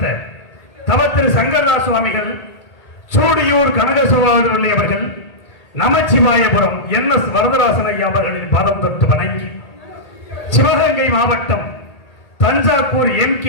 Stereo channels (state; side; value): late; right; 1.8 ms